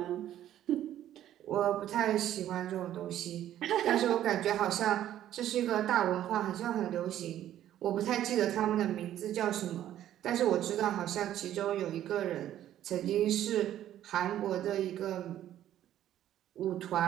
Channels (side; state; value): left; quieter; 12.0 dB